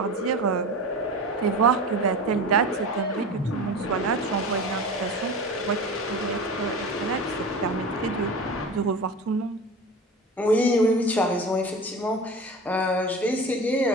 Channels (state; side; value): normal; both; correlation 0.32